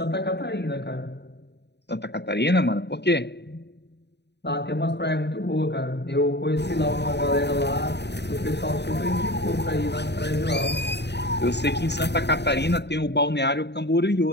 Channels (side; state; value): right; late; 0.50 ms